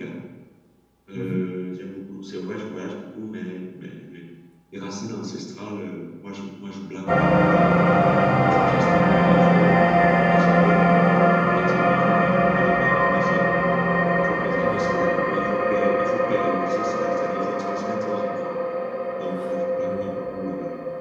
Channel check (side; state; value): both; identical; correlation 1.00